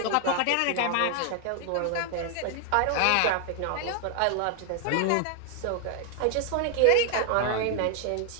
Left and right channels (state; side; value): different; both; correlation 0.00